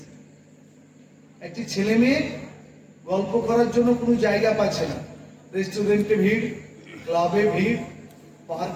একটি ছেলে মেয়ে গল্প করার জন্য কোনো জায়গা পাচ্ছে না, রেস্টুরেন্টে ভিড়, ক্লাবে ভিড়,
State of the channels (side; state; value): both; identical; correlation 1.00